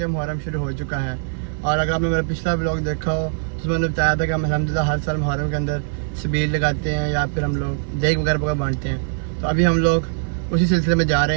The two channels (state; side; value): silent; left; digital silence